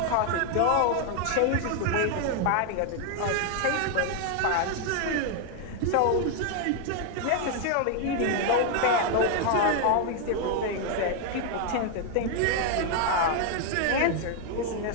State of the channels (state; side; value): different; both; correlation 0.00